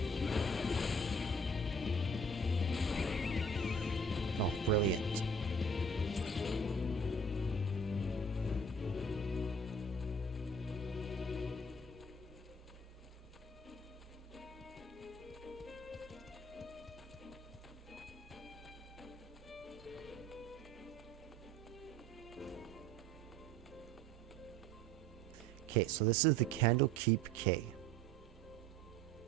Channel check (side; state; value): both; normal; correlation 0.50